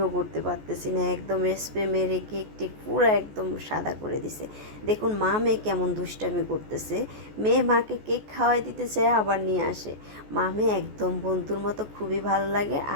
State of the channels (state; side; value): late; left; 14 ms